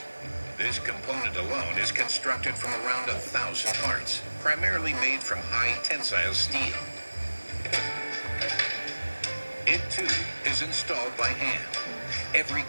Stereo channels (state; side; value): inverted; both; correlation -1.00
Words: This component alone is constructed from around 1,000 parts, primarily made from high tensile steel. It too is installed by hand. Every